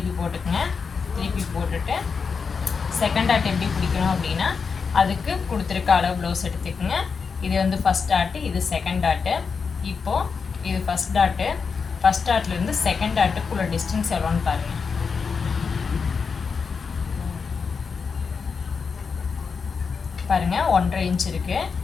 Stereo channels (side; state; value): right; quieter; 5.5 dB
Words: போட்டுக்குங்க. திருப்பி போட்டுட்டு செகண்ட் டாட் எப்படி பிடிக்கணும் அப்படின்னா, அதுக்கு கொடுத்துருக்க அளவு ப்ளவுஸ் எடுத்துக்கோங்க. இது வந்து ஃபஸ்ட் டாட்டு, இது செகண்ட் டாட்டு. இப்போது இது ஃபஸ்ட் டாட்டு. ஃபஸ்ட் டாட்லேருந்து செகண்ட் டாட்டுக்குள்ள டிஸ்டன்ஸ் எவ்வளோன்னு பாருங்கள். பாருங்கள், 1.5 இன்ச் இருக்குது.